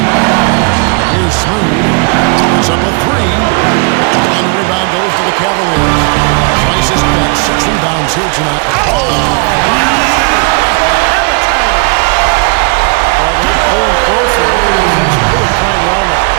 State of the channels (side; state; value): left; quieter; 34.8 dB